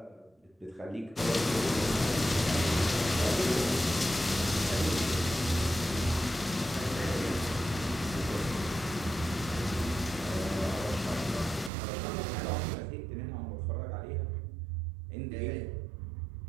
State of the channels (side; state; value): left; drops out; at 11.7 s